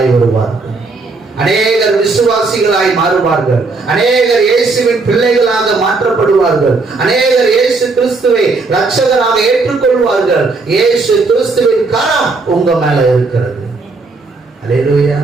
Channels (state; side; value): quieter; left; 3.8 dB